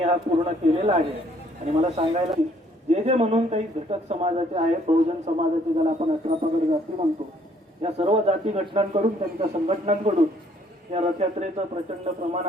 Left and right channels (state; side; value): normal; both; correlation 0.63